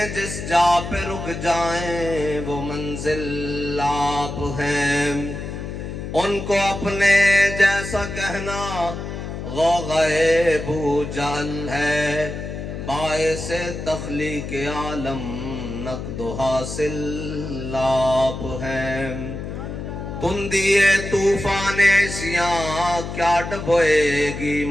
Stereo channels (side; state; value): left; noise; hum, 7 dB below the sound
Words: جس جا پہ رک جائیں وہ منزل آپ ہیں ان کو اپنے جیسا کہنا غوغائے بو جہل ہے باعث تخلیق عالم نقد و حاصل آپ ہیں تندیے طوفان عصیاں کیا ڈبوئے گی